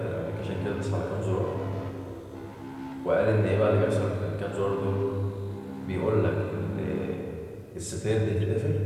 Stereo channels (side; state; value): both; identical; correlation 1.00